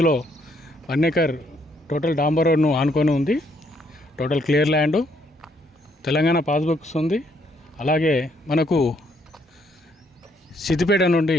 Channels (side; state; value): both; normal; correlation 0.71